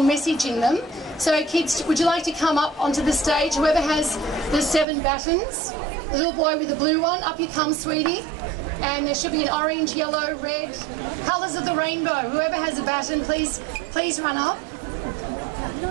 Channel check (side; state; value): left; drops out; at 4.9 s